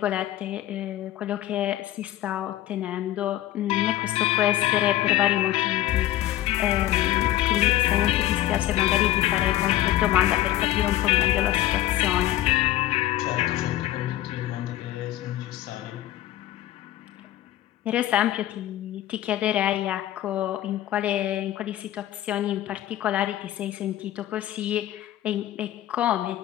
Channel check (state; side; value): quieter; right; 14.0 dB